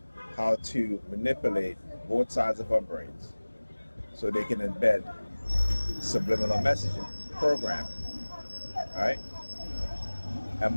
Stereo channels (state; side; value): inverted; both; correlation -1.00